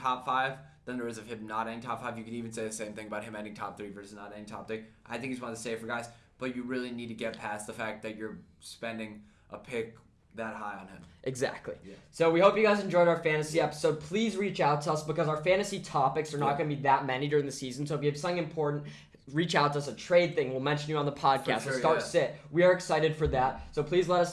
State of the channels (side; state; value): both; identical; correlation 1.00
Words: 5 than there is of him not ending top 5. You could even say the same thing about him ending top 3 versus not ending top 3. I think he's one of the safer guys, but you really need to get past the fact that you're spending a pick that high on him. Exactly. Yeah. So we hope you guys enjoyed our fantasy episode. Please reach out to us because our fantasy topics are not going to be that many during the season. So if you have something important, reach out to us. A trade thing, we'll mention you on the podcast. Sure, sit. We are excited for that. So please let